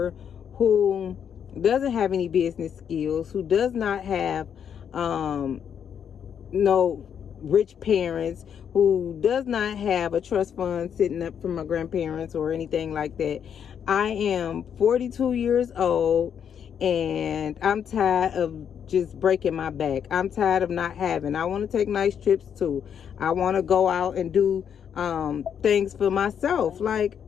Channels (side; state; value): right; quieter; 8.1 dB